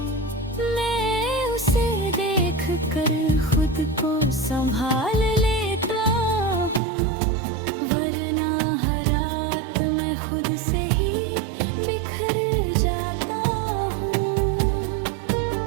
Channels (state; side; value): drops out; left; at 6.8 s